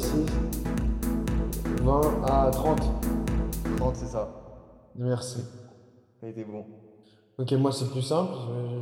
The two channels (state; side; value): identical; both; correlation 1.00